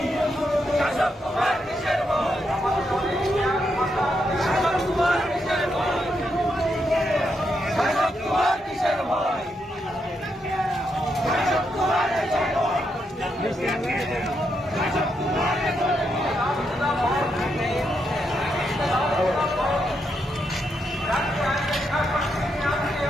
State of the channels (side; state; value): both; normal; correlation 0.81